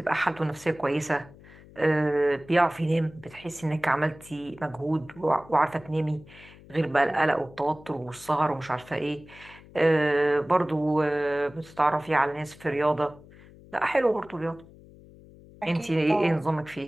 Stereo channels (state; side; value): noise; left; hum, 22 dB below the sound